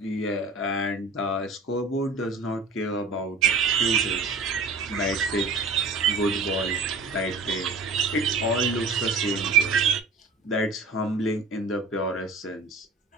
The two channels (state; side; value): quieter; left; 3.6 dB